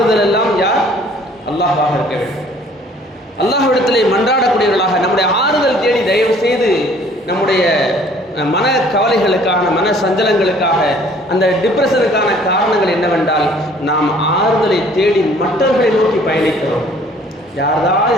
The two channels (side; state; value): both; normal; correlation 0.56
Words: எல்லாம் யார்? அல்லாஹ்வாக இருக்க வேண்டும். அல்லாஹ்விடத்திலே மன்றாடக்கூடியவர்களாக நம்முடைய ஆறுதல் தேடி தயவு செய்து நம்முடைய மன கவலைகளுக்கான, மன சஞ்சலங்களுக்காக, அந்த டிப்ரெஷனுக்கான காரணங்கள் என்னவென்றால், நாம் ஆறுதலை தேடி மற்றவர்களை நோக்கி பயணிக்கிறோம். யாராவது